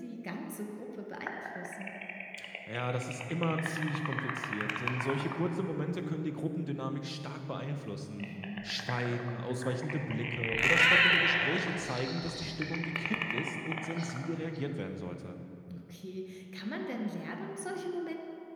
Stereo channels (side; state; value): both; identical; correlation 1.00